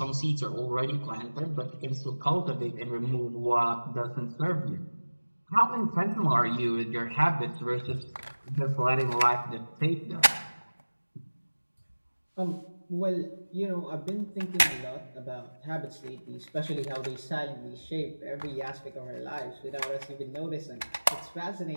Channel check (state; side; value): inverted; both; correlation -1.00